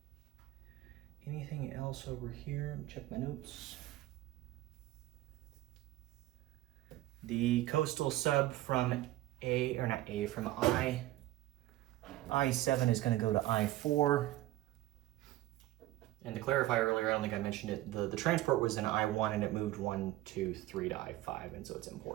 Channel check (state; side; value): quieter; left; 15.9 dB